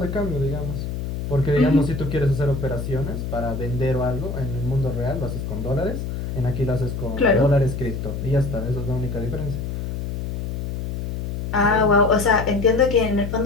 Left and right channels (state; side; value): noise; left; hum, 4 dB below the sound